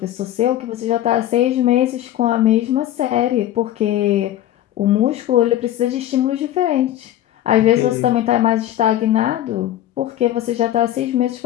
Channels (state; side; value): quieter; right; 12.7 dB